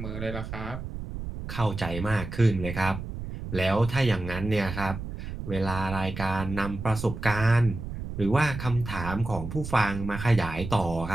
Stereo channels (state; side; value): noise; right; rumble, 8 dB below the sound